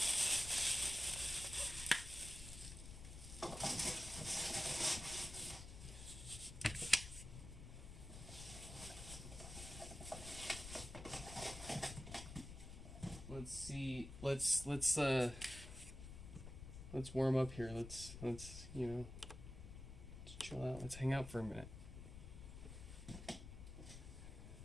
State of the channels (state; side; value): noise; left; rumble, 11 dB below the sound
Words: Let's see. Let's warm up here. Let's let's chill out. Let's hang out for a minute.